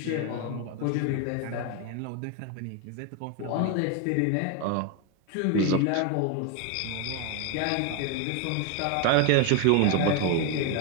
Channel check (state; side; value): different; both; correlation 0.01